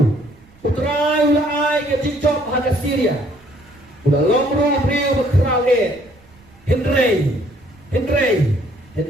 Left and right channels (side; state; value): right; noise; rumble, 27 dB below the sound